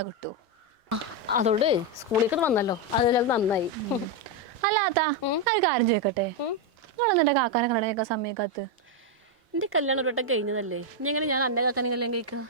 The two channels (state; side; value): late; left; 2.0 ms